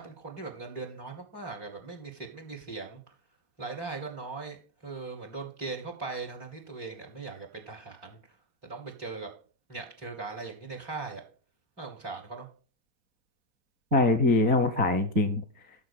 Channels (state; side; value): late; left; 4.2 ms